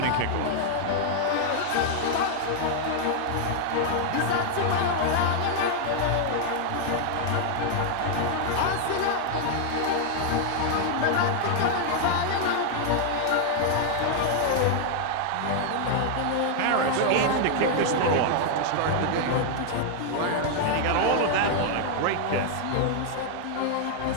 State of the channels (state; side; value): different; both; correlation -0.01